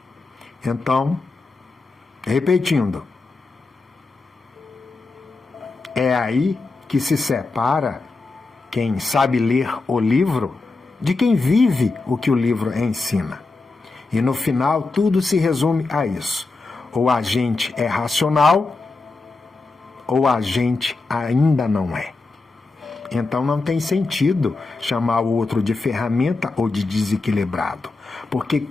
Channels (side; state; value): right; quieter; 3.6 dB